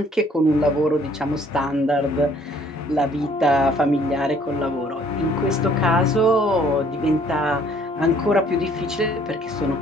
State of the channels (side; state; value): both; normal; correlation 0.60